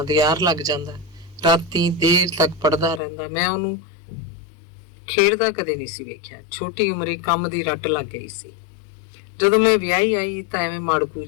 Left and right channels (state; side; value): drops out; right; at 3.0 s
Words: ਦੇ ਆਰ ਲੱਗ ਜਾਂਦਾ। ਰਾਤੀ ਦੇਰ ਤੱਕ ਪੜ੍ਹਦਾ ਰਹਿੰਦਾ। ਮੈਂ ਉਹਨੂੰ ਖੇਡਦਾ ਕਦੇ ਨਹੀਂ ਸੀ ਵੇਖਿਆ। ਛੋਟੀ ਉਮਰੇ ਕੰਮ ਦੀ ਰੱਟ ਲੱਗ ਗਈ ਸੀ। ਜਦੋਂ ਮੈਂ ਵਿਆਹੀ ਆਈ ਤਾਂ ਐਵੇਂ ਮਾੜਕੂ